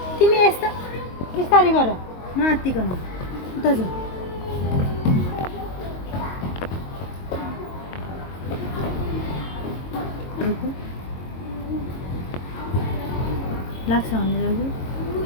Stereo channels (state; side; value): late; right; 22 ms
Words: तिमी यस्तो बिस्तारै गर नआत्तिकन। उता जाऊ। लाग्छ भने